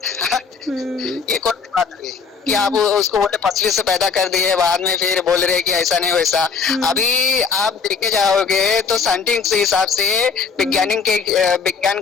ये कौन सी बात है कि आप उसको बोले पसली से पैदा कर दिए, बाद में फिर बोल रहे कि ऐसा नहीं वैसा। अभी आप देखे जाओगे तो साइंटिस्ट के हिसाब से, विज्ञान के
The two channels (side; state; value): right; quieter; 5.6 dB